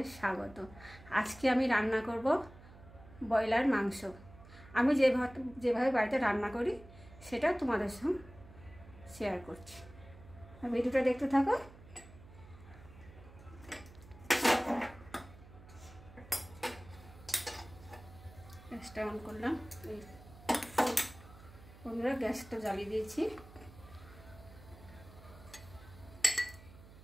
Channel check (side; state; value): right; noise; hum, 19 dB below the sound